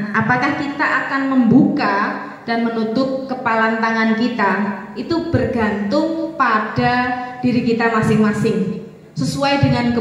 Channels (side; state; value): both; identical; correlation 1.00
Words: apakah kita akan membuka dan menutup kepalan tangan kita? Itu bergantung pada diri kita masing-masing, sesuai dengan